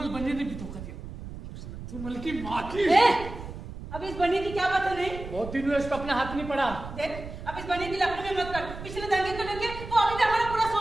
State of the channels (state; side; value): noise; right; rumble, 11 dB below the sound